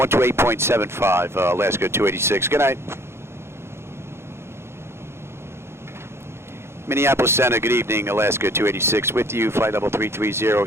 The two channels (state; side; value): late; left; 0.12 ms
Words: Alaska 286. Good night. Minneapolis Center, good evening, Alaska 286 with you, flight level